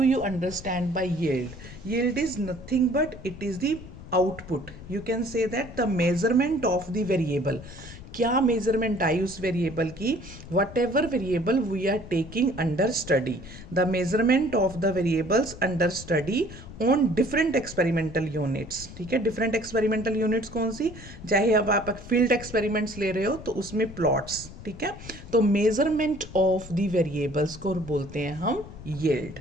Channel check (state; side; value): noise; left; rumble, 15 dB below the sound